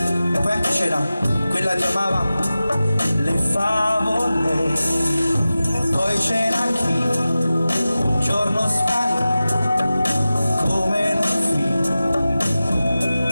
E poi anche c'era quella che amava le favole. Poi c'era chi un giorno sparì come in un film,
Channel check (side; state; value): both; inverted; correlation -0.95